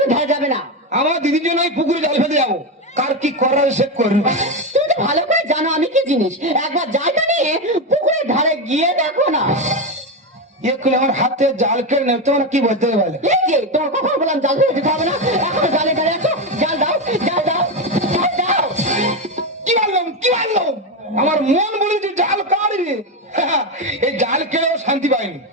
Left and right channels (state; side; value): normal; both; correlation 0.12